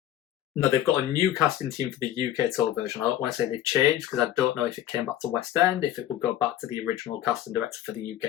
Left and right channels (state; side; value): quieter; right; 12.1 dB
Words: No, they've got a new casting team for the UK tour version. I don't want to say they've changed because I don't know if it came back to West End, if it would go back to the original casting director for the